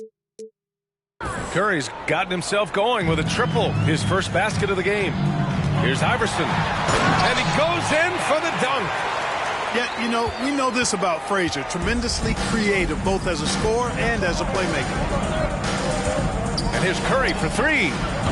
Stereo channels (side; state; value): both; identical; correlation 1.00